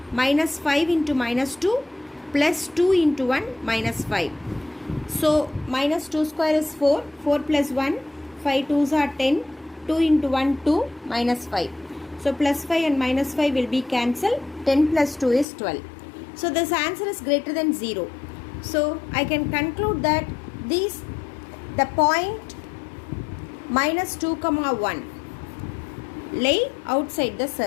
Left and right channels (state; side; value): drops out; right; at 15.5 s